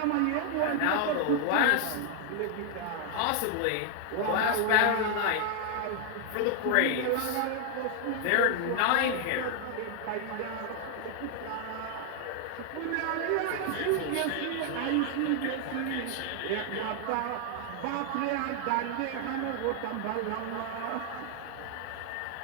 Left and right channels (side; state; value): both; different; correlation 0.00